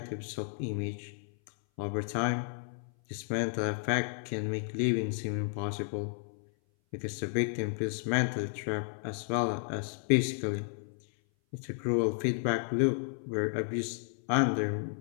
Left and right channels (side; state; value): right; silent; 56 dB below the other